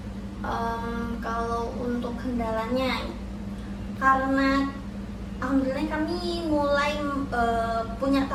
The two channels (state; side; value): identical; both; correlation 1.00